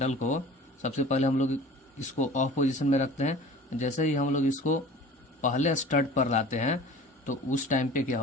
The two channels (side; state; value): both; normal; correlation 0.42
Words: को, सबसे पहले हम लोग इसको ऑफ पोजीशन में रखते हैं। जैसे ही हम लोग इसको पहले स्टड पर लाते हैं तो उस टाइम पे क्या